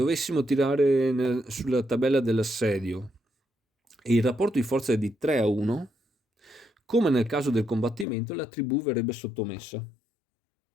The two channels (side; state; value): right; drops out; at 8.1 s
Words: sulla tabella dell'assedio e il rapporto di forza è di 3-1, come nel caso del combattimento, la tribù verrebbe sottomessa.